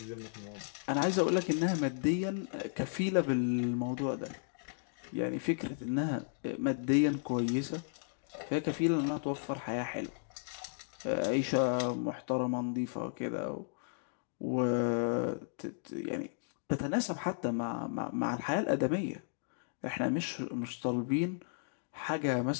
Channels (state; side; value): silent; right; digital silence